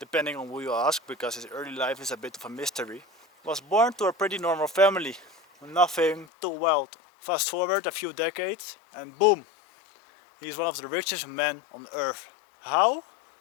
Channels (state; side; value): drops out; right; at 6.2 s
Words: on who you ask, because his early life is a bit of a mystery, was born to a pretty normal family, nothing too wild. Fast forward a few decades, and boom, he's one of the richest men on earth. How?